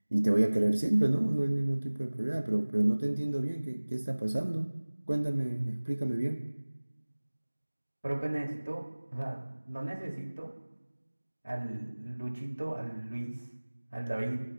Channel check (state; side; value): inverted; both; correlation -1.00